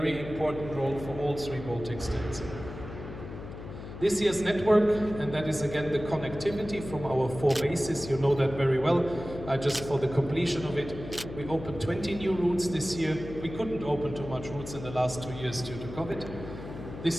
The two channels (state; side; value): noise; left; hum, 11 dB below the sound